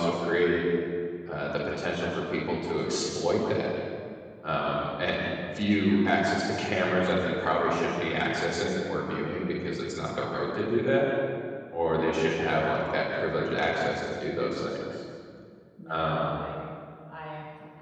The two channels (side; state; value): both; identical; correlation 1.00